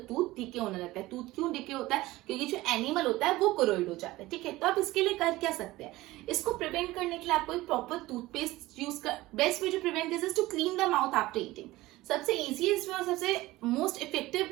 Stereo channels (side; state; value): left; quieter; 18.3 dB